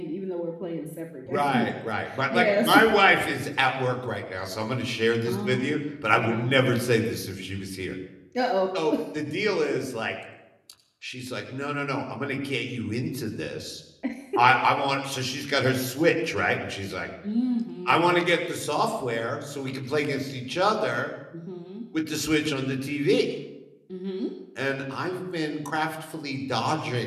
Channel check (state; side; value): identical; both; correlation 1.00